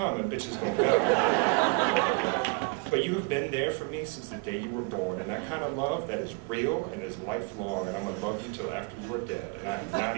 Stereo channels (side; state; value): left; quieter; 30.4 dB